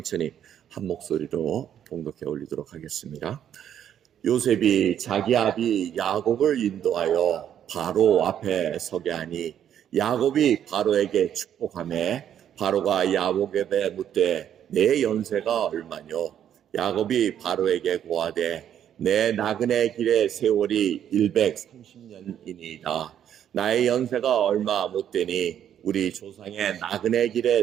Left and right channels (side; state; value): left; quieter; 9.8 dB